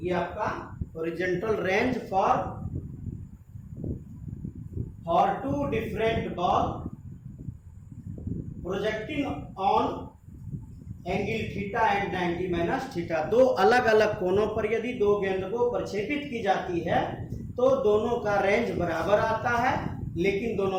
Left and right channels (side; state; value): both; identical; correlation 1.00